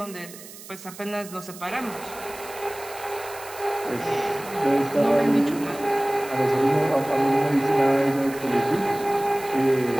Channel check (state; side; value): noise; right; hiss, 16 dB below the sound